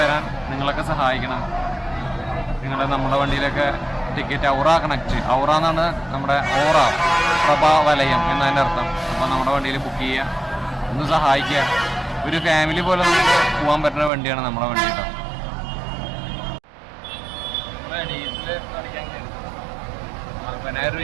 വരാൻ നിങ്ങളൊക്കെ സഹായിക്കണം. നമ്മുടെ വണ്ടിയിലൊക്കെ ടിക്കറ്റ് ഔറ എന്നാണ് നമ്മുടെ പ്രഭാ വലയം എന്നതിൻ്റെ അർത്ഥം. അപ്പോൾ നമ്മുടെ വണ്ടിയിൽ ബുക്ക് ചെയ്യുക, ഒന്ന് സഹായിക്കുക. ഒരു ഫാമിലി പോലെ നമുക്ക് പോകാൻ പറ്റുന്ന വണ്ടിയാണ് നമ്മുടെ വണ്ടി കേട്ടോ. ഡീസൽ അടിക്കാൻ 40,000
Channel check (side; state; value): left; drops out; at 14.1 s